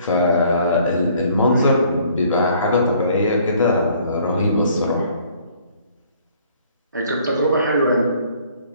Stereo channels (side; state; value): both; inverted; correlation -0.59